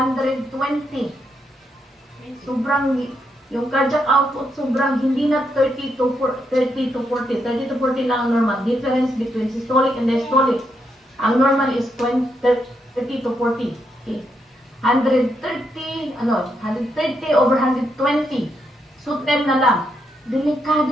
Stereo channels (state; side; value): normal; both; correlation 0.80